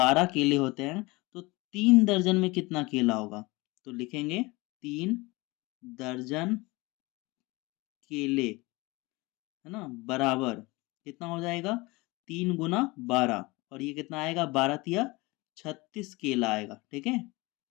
केले होते हैं तो 3 दर्जन में कितना केला होगा? तो लिखेंगे 3 दर्जन केले, है ना, बराबर कितना हो जाएगा? 3 गुना 12 और ये कितना आएगा? 12 तिया 36 केला आएगा। ठीक है,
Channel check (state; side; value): quieter; right; 23.5 dB